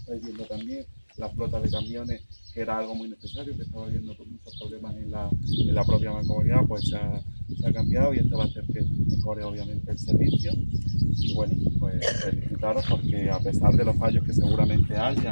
viendo también, la flota de camiones, que era algo muy necesario, que estaba habiendo muchos problemas en la propia mancomunidad, pues se ha cambiado, y esto va a hacer que mejore obviamente el servicio. Y bueno, pues felicitaros, porque a pesar de los fallos que seguramente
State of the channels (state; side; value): inverted; both; correlation -1.00